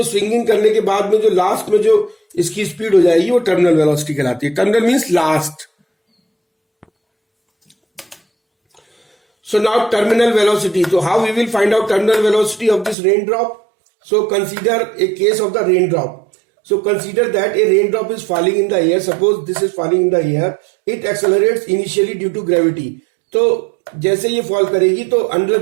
स्विंगिंग करने के बाद में जो लास्ट में जो इसकी स्पीड हो जाएगी वो टर्मिनल वेलोसिटी कहलाती है. Terminal means last. So now terminal velocity. So how we will find out terminal velocity of this raindrop? So consider a case of the raindrop. So consider that a raindrop is falling in the air. Suppose this is falling in the air. It accelerates initially due to gravity. तो जैसे ये fall करेगी तो under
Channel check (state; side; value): drops out; left; at 13.0 s